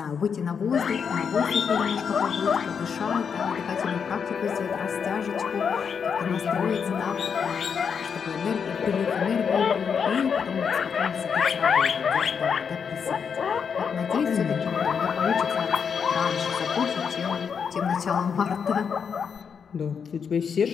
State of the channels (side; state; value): right; quieter; 6.6 dB